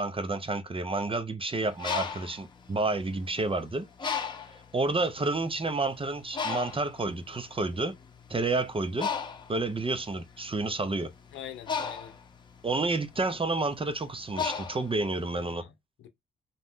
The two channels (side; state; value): both; normal; correlation 0.46